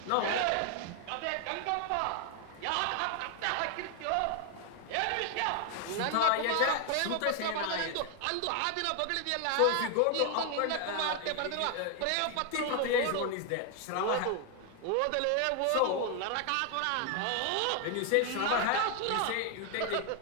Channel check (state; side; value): different; both; correlation 0.00